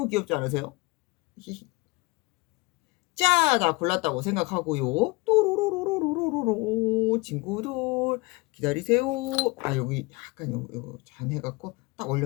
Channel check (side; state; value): right; quieter; 24.7 dB